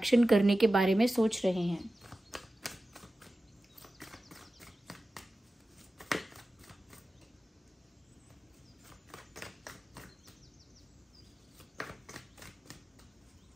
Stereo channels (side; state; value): both; normal; correlation 0.94